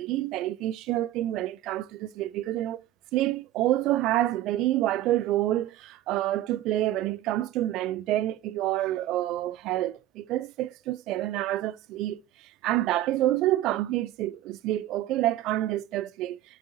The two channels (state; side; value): quieter; left; 14.2 dB